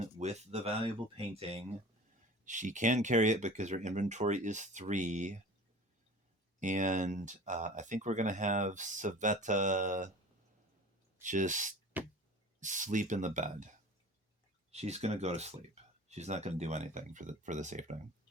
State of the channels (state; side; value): normal; both; correlation 0.40